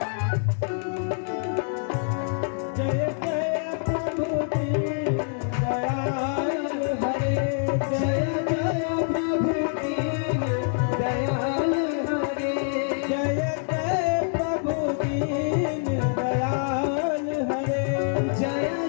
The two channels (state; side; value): silent; right; 61 dB below the other